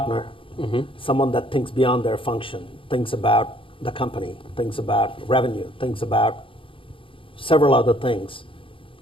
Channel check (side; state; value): right; late; 0.25 ms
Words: someone that thinks beyond their function, thinks about the company, thinks about revenue, thinks about several other things